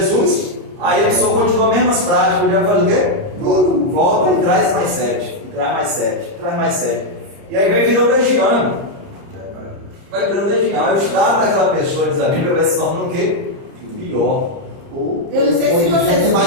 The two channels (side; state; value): left; late; 30 ms